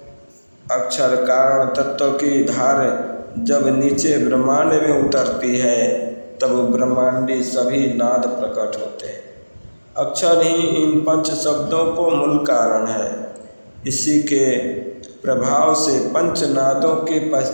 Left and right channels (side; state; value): both; inverted; correlation -1.00